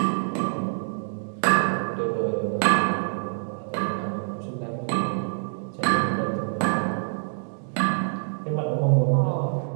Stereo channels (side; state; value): left; silent; digital silence